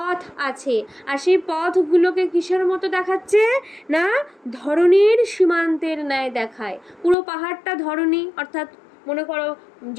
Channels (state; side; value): drops out; right; at 7.2 s